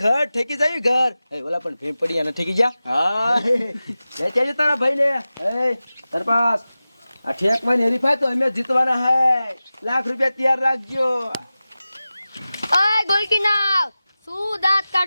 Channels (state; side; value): inverted; both; correlation -0.96